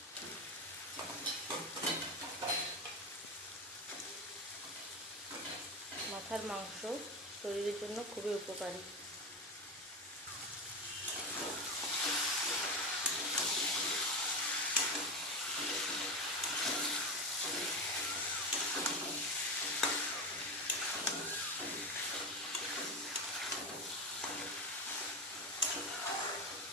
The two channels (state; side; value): normal; both; correlation 0.19